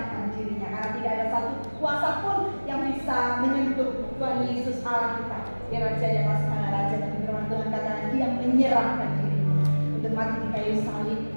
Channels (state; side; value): inverted; both; correlation -1.00